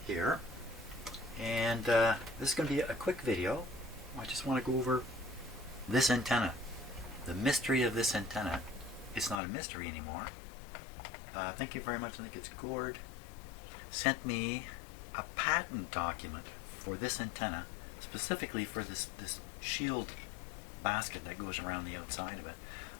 here. And this is going to be a quick video. I just want to go over this antenna. The mystery of this antenna. It's not a mystery anymore. Thank you very much. I think it's Gord. Sent me a patent document for this antenna, specifically for this shield basket that goes around the outside of it.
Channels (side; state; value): right; drops out; at 9.4 s